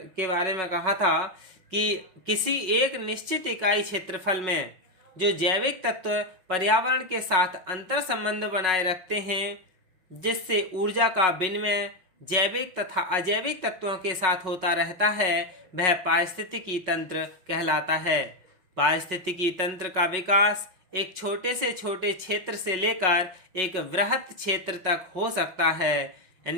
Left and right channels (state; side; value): late; left; 5.4 ms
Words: के बारे में कहा था कि किसी एक निश्चित इकाई क्षेत्रफल में जो जैविक तत्व पर्यावरण के साथ अंतर संबंध बनाए रखते हैं, जिससे ऊर्जा का विनिमय जैविक तथा अजैविक तत्वों के साथ होता रहता है, वह पारिस्थितिकी तंत्र कहलाता है। पारिस्थितिकी तंत्र का विकास एक छोटे से छोटे क्षेत्र से लेकर एक वृहत क्षेत्र तक हो सकता है।